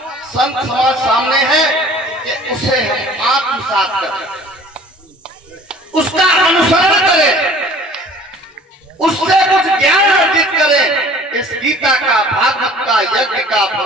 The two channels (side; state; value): both; normal; correlation 0.49